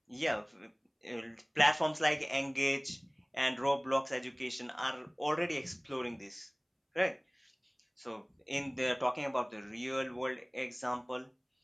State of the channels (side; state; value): both; identical; correlation 1.00